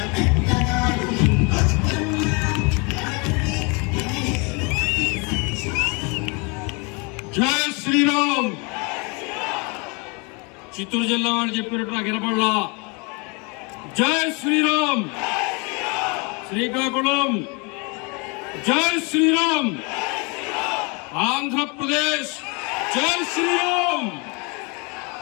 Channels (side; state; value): right; quieter; 31.1 dB